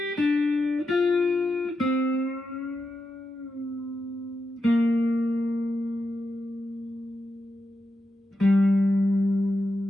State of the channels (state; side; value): normal; both; correlation 0.87